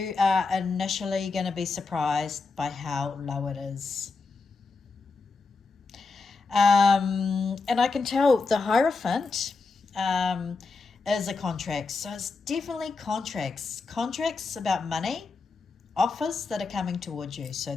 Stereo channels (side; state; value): right; quieter; 4.3 dB